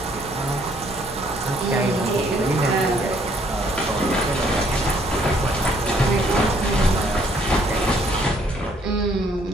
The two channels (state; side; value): normal; both; correlation 0.65